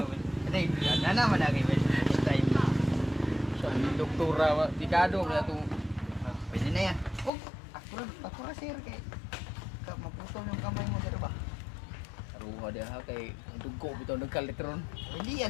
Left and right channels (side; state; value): right; drops out; at 7.3 s